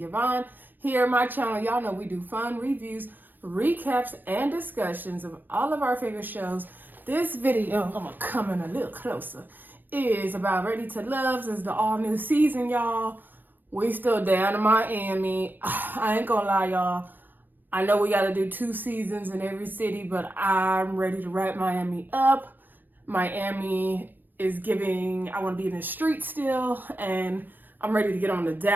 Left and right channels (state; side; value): late; left; 0.089 ms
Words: Yvonne. Here on my channel, y'all know we do fun reviews, recaps, and discussions of all of our favorite shows. This video, I'm gonna come in a little closer, is about Ready to Love. This is the all new season, y'all. We still down in Miami. I ain't gonna lie, y'all. I know we gotta do 2 seasons in every city, but I'm ready to wrap Miami up. Miami is giving, I want to be in the street still, and I'm ready to get on to